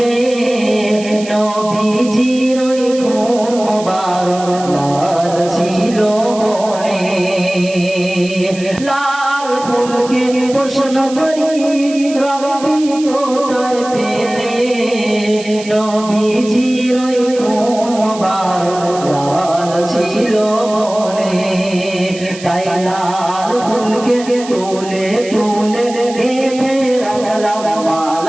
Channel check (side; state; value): right; noise; hiss, 15 dB below the sound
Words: নবীজির ওই কোন মোবারক লাল ছিল বনে। লাল ফুলকে প্রশ্ন করি রবি কোথায় পেলে, নবীজির ওই কোন মোবারক লাল ছিল বনে। তাই লাল ফুলকে তুলে তুলে গেঁথে রাখলাম